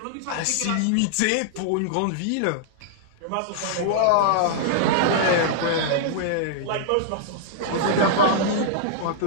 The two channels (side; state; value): both; different; correlation -0.01